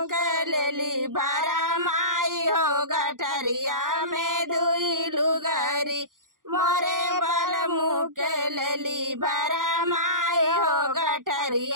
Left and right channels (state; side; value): late; left; 0.90 ms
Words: के लेली भरा माई हो गठरिया में दुई लुगारी। मोरे बलमु के लेली भरा माई हो